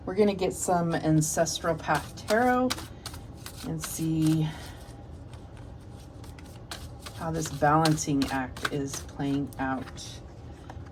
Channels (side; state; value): both; identical; correlation 1.00